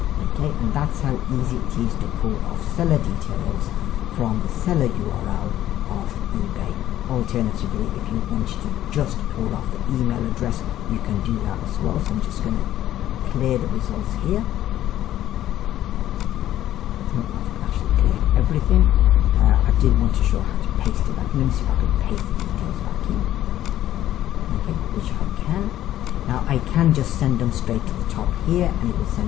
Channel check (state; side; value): quieter; right; 12.9 dB